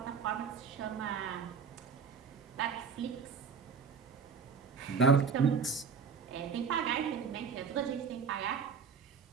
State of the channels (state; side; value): quieter; left; 6.0 dB